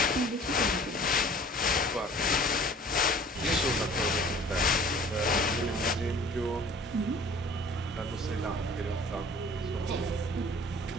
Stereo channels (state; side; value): normal; both; correlation 0.49